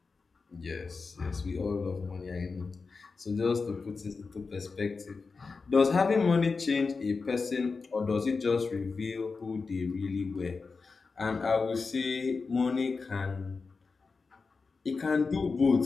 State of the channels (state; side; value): quieter; right; 4.5 dB